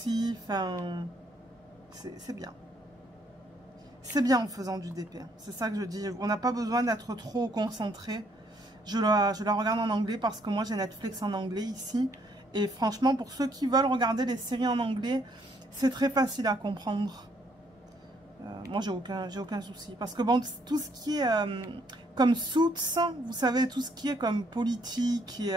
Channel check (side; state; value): both; normal; correlation 0.69